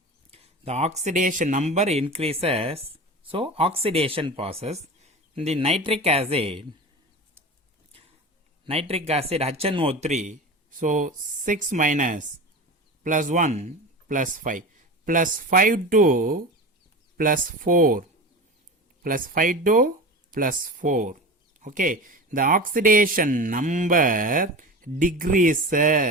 the oxidation number increases. So, oxidation process. In the nitric acid HNO₃. So, 6 minus plus 1 plus 5 plus 5 to plus 4 plus 5 to plus 4. Okay, the oxidation number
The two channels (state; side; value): normal; both; correlation 0.30